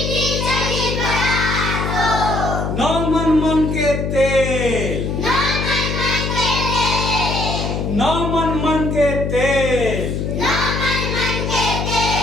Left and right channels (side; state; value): left; noise; hum, 2 dB below the sound